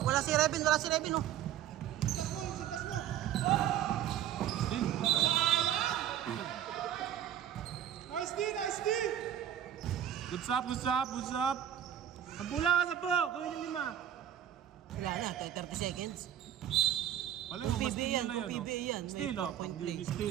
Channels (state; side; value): quieter; left; 10.7 dB